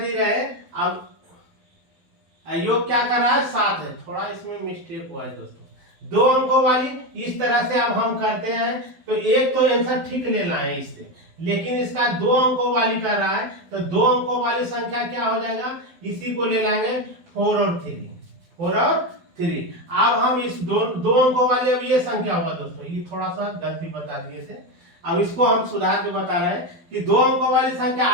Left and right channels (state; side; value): late; left; 12 ms